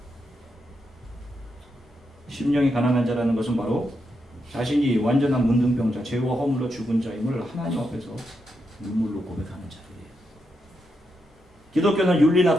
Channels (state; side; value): normal; both; correlation 0.83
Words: 심령이 가난한 자라는 것은 바로 자신이 완전한 문둥병자, 죄와 허물로 죽은 자임을 하나님 앞에서 눈물로 고백하는 자들이에요. 기독교는 윤리나